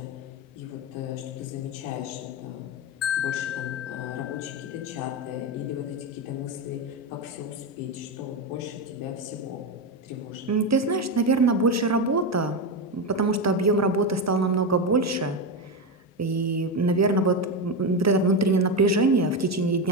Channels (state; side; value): normal; both; correlation 0.13